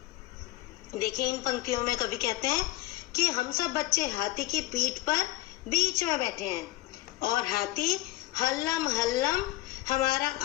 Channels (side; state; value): right; quieter; 17.5 dB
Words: देखिए इन पंक्तियों में कवि कहते हैं कि हम सब बच्चे हाथी की पीठ पर बीच में बैठे हैं और हाथी हल्लम हल्लम हमारा